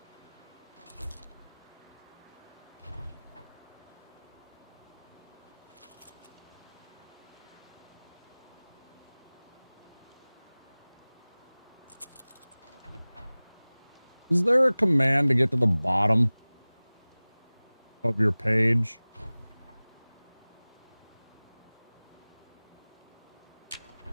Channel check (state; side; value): inverted; both; correlation -1.00